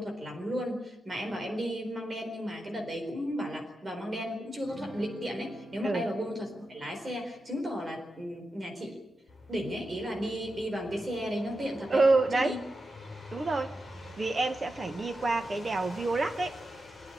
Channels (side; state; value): both; normal; correlation 0.89